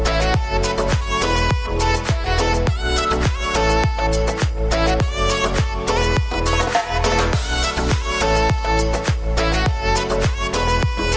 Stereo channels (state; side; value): identical; both; correlation 1.00